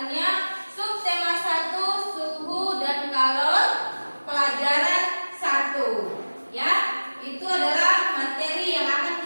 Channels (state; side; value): inverted; both; correlation -1.00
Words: Subtema 1, suhu dan kalor, pelajaran 1. Ya, itu adalah materi yang